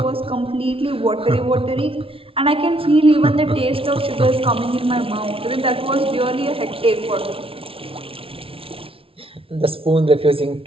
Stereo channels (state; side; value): late; left; 0.26 ms